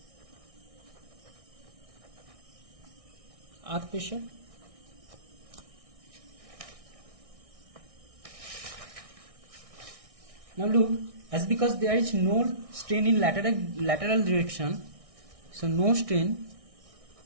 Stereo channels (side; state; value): left; late; 1.6 ms